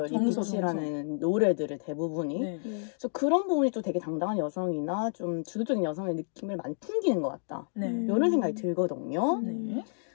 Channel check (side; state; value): right; silent; digital silence